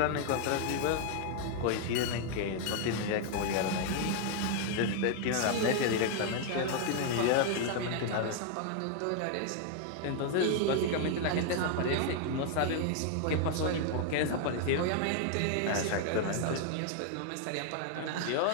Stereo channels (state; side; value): different; both; correlation 0.00